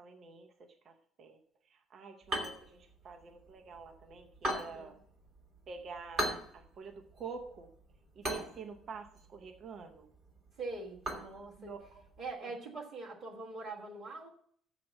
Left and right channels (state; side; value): normal; both; correlation 0.61